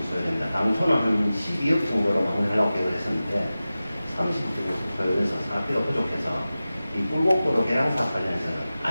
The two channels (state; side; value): inverted; both; correlation -0.95